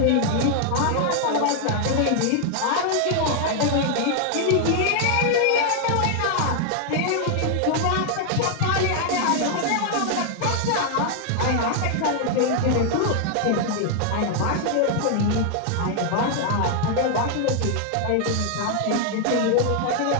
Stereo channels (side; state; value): both; different; correlation 0.00